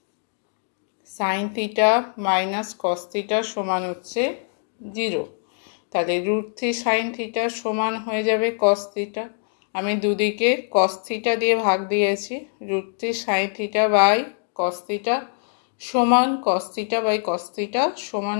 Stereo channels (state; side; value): silent; right; digital silence